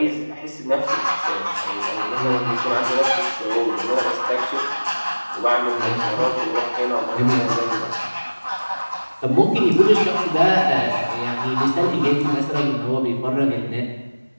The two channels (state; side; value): inverted; both; correlation -1.00